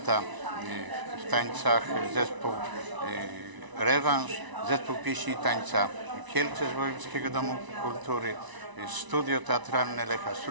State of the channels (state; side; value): late; left; 1.0 ms